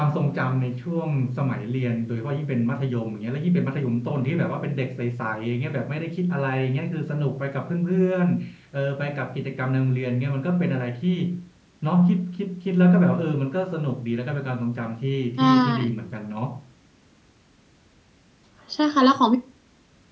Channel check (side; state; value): both; identical; correlation 1.00